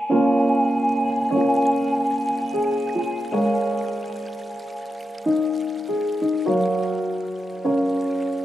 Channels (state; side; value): normal; both; correlation 0.89